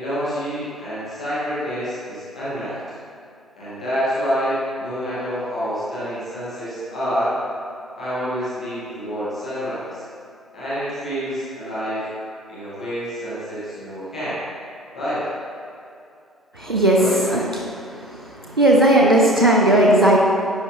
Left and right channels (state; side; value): normal; both; correlation 0.46